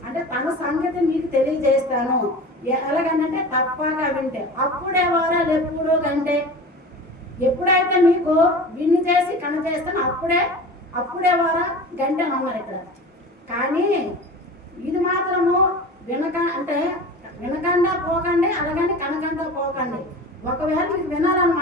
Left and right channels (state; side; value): normal; both; correlation 0.35